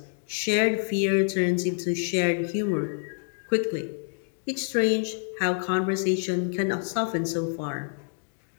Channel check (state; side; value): silent; right; 60 dB below the other